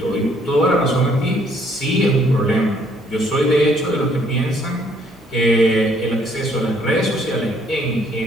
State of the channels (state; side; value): normal; both; correlation 0.65